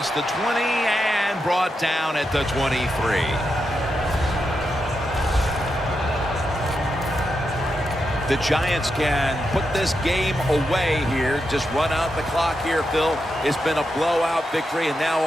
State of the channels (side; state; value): both; normal; correlation 0.86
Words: the 20 and brought down at the 23. The Giants can put this game away here. Just run out the clock here, Phil. It's been a blowout victory, and now